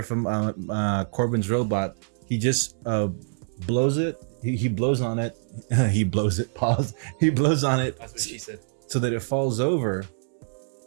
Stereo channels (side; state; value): left; silent; digital silence